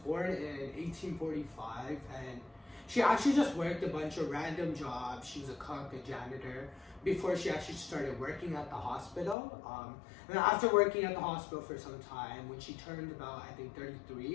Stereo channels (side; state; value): right; drops out; at 9.3 s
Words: in 1845, and she actually just worked a bunch of random jobs. She was a cook, a janitor, before she actually started working at the hospital. And then after working at the hospital for some time, when she turned about, I think,